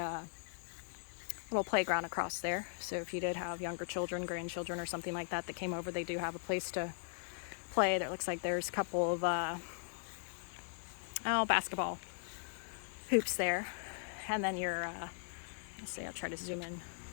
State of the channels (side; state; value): right; silent; digital silence